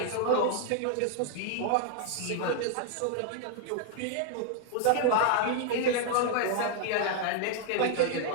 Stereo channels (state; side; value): different; both; correlation 0.00